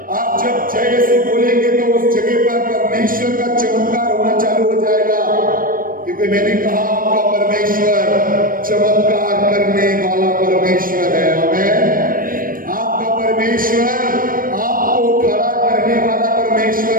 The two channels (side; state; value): left; late; 0.41 ms